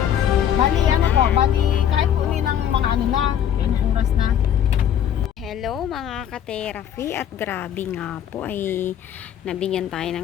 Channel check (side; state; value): right; quieter; 9.6 dB